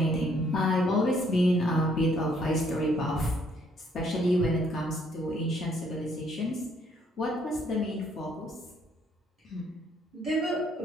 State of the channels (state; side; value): normal; both; correlation 0.67